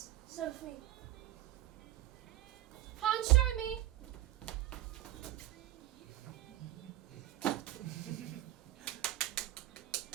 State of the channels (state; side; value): quieter; left; 14.9 dB